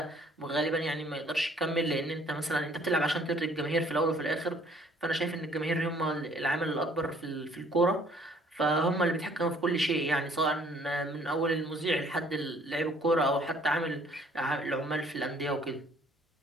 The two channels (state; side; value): normal; both; correlation 0.59